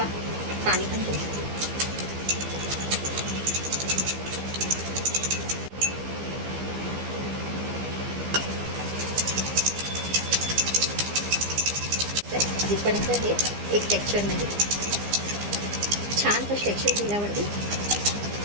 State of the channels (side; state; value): left; late; 15 ms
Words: पाणी पण घेऊ शकतो. जिथपर्यंत हे एक टेक्स्चर नाही छानसं टेक्स्चर दिल्यावरती